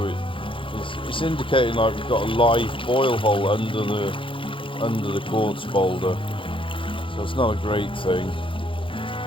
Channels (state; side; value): late; right; 0.25 ms